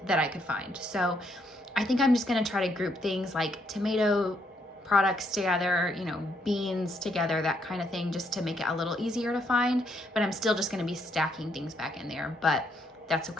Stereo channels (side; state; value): both; normal; correlation 0.73